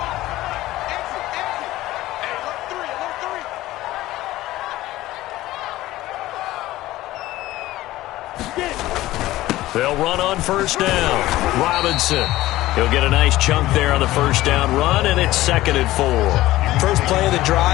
They'll run on first down. Robinson. He'll get a nice chunk there on the first down run, and it's 2nd and 4. First play of the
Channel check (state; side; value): quieter; right; 16.5 dB